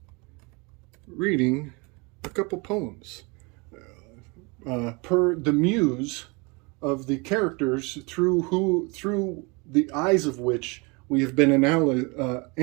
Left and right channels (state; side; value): quieter; left; 28.8 dB